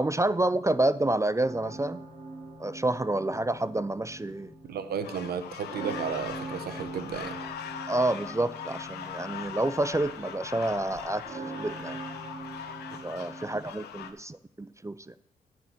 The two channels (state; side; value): normal; both; correlation 0.74